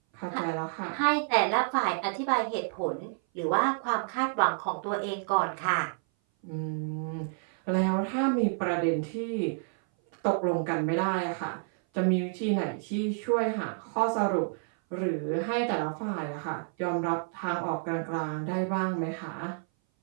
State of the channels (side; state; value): left; silent; 57 dB below the other